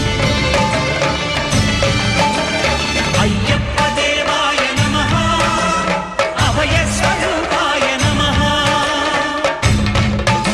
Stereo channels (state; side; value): identical; both; correlation 1.00